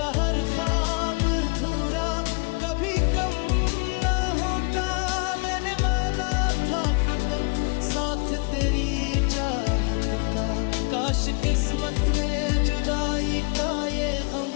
हर ख्वाब अधूरा कभी कम ना होता। मैंने माना था फकत साथ तेरी चाहत का, काश किस्मत में जुदाई का ये गम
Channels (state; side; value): quieter; right; 32.6 dB